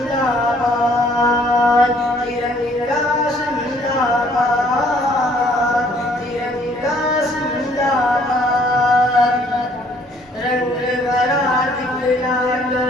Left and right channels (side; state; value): both; normal; correlation 0.61